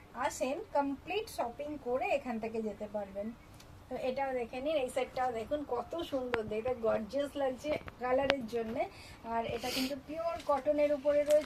আসেন কমপ্লিট শপিং করে এখান থেকে যেতে পারবেন। তো এটাও দেখে নিন, এই সেটটাও দেখুন কত সুন্দর, এটা গর্জিয়াস লাগছে কালারের জন্যে। আর এটা কিন্তু পিওর কটনের উপরে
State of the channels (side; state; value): both; identical; correlation 1.00